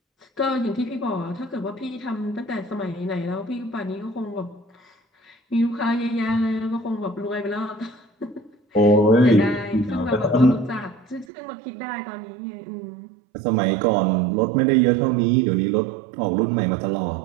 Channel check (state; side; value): drops out; left; at 11.2 s